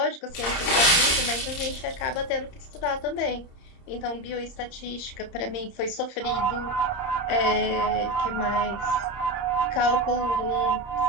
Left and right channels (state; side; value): late; right; 30 ms